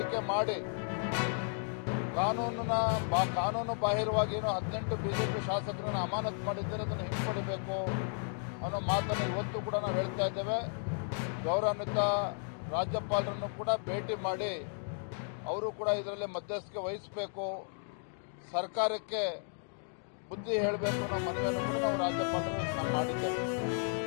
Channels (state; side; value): silent; right; 55 dB below the other